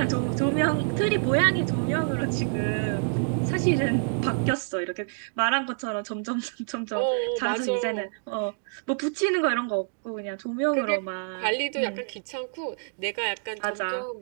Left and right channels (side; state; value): left; silent; digital silence